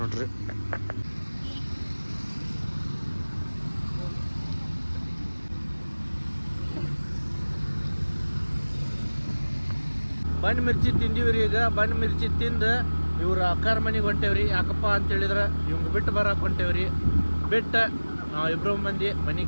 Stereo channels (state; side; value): inverted; both; correlation -1.00